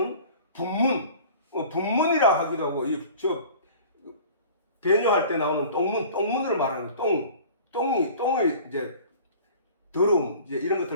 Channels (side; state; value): both; inverted; correlation -0.44